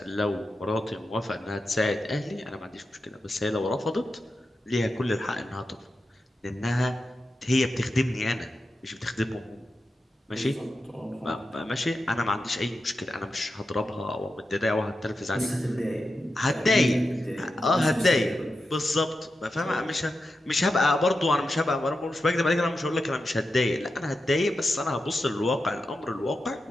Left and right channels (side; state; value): both; normal; correlation 0.90